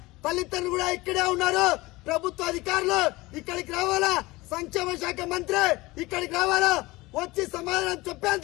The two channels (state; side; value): quieter; right; 21.0 dB